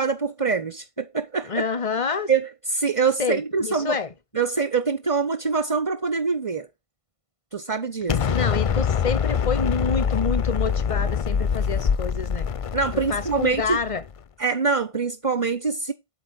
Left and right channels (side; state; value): right; late; 1.5 ms